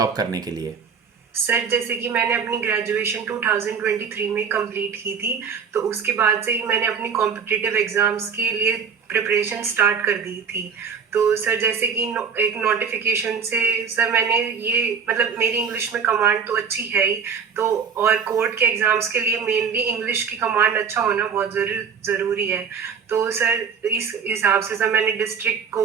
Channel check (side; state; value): left; quieter; 6.5 dB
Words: करने के लिए? सर जैसे कि मैंने अपनी ग्रेजुएशन 2023 में कंप्लीट की थी, तो उसके बाद से ही मैंने अपनी कॉम्पिटिटिव एग्जाम्स के लिए प्रिपरेशन स्टार्ट कर दी थी। तो सर जैसे कि एक नोटिफिकेशन से सर मैंने ये मतलब मेरी इंग्लिश में कमांड तो अच्छी है ही, तो और कोर्ट के एग्जाम्स के लिए मेनली इंग्लिश की कमांड अच्छा होना बहुत ज़रूरी है। तो सर इस हिसाब से सर मैंने डिस्ट्रिक्ट